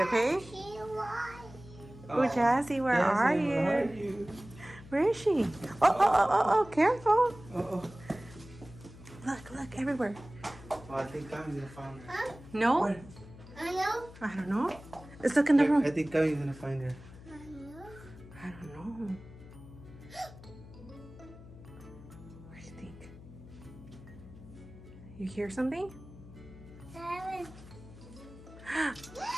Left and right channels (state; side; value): noise; left; hum, 18 dB below the sound